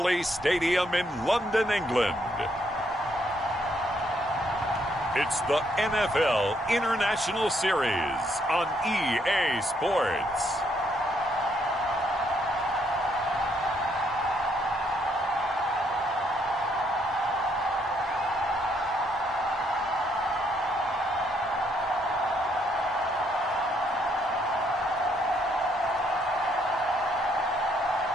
Stadium in London, England, it's the NFL International Series on EA Sports.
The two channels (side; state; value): both; normal; correlation 0.72